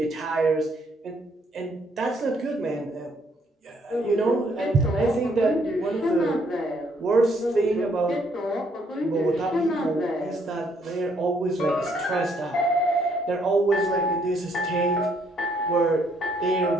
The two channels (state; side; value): normal; both; correlation 0.68